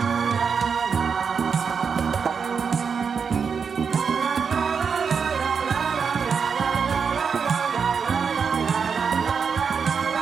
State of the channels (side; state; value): left; quieter; 6.1 dB